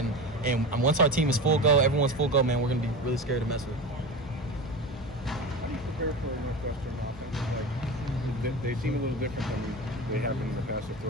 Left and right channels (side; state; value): both; normal; correlation 0.27